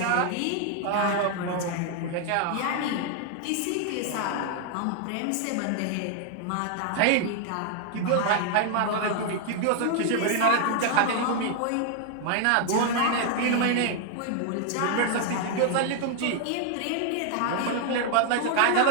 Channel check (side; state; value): both; different; correlation 0.00